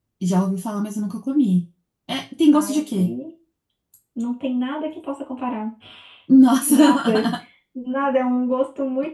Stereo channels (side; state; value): both; identical; correlation 1.00